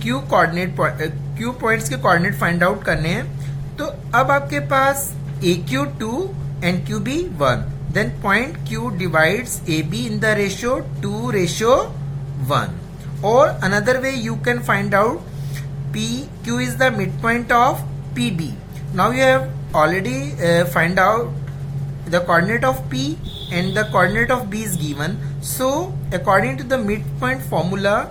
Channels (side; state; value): both; identical; correlation 1.00